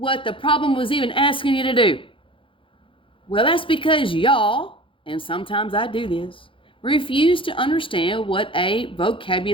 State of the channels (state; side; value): late; right; 0.25 ms